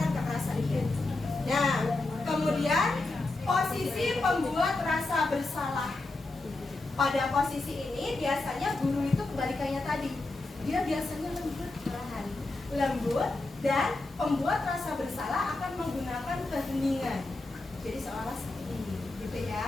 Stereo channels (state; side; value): quieter; right; 3.1 dB